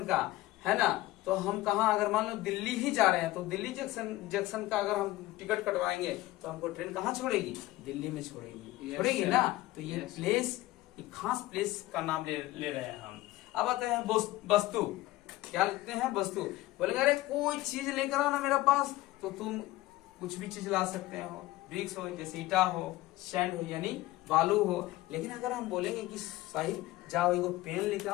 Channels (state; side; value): quieter; right; 17.6 dB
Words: का, है ना। तो हम कहाँ, अगर मान लो दिल्ली ही जा रहे हैं, तो दिल्ली जंक्शन का अगर हम टिकट कटवाएंगे तो हमको ट्रेन कहाँ छोड़ेगी? दिल्ली में छोड़ेगी। छोड़ेगी ना। तो ये प्लेस, एक खास प्लेस का नाम ले रहे हैं हम। अब आते हैं वस्तु। क्या लिखते हैं? वस्तु। बोलेंगे अरे कोई चीज लेकर आओ ना मेरे पास, तो तुम कुछ भी चीज ला सकते हो। ब्रिक्स हो, जैसे ईटा हो, सैंड हो, यानी बालू हो। लेकिन अगर हम बोलेंगे कि साहिल जाओ एगो पेन लेकर